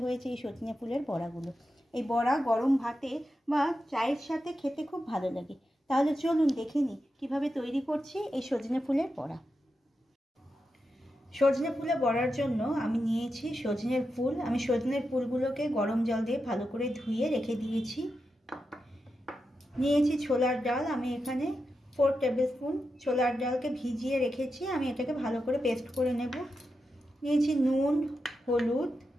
হয়েছে এই সজনে ফুলের বড়াগুলো। এই বড়া গরম ভাতে বা চায়ের সাথে খেতে খুব ভালো লাগে। তাহলে চলুন দেখে নিই কীভাবে তৈরি করছি এই সজনে ফুলের বড়া। সজনে ফুলে বড়ার জন্য আমি নিয়েছি সজনের ফুল। আমি সজনের ফুলগুলোকে গরম জল দিয়ে ভালো করে ধুয়ে রেখে দিয়েছি। নিয়েছি ছোলার ডাল। আমি এখানে 4 টেবিল স্পুন ছোলার ডালকে ভিজিয়ে রেখেছি। আমি এটাকে ভালো করে পেস্ট করে নেব। নিয়েছি নুন, হলুদ,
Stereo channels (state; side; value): normal; both; correlation 0.88